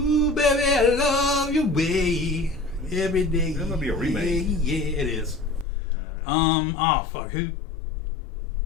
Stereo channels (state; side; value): drops out; right; at 5.7 s